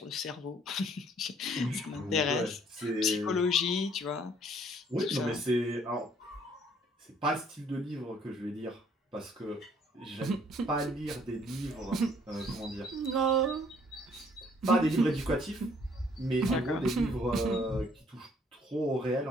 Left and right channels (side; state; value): both; normal; correlation 0.61